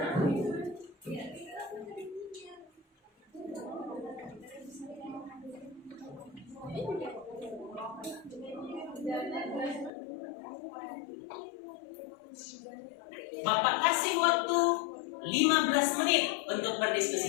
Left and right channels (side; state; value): right; drops out; at 9.9 s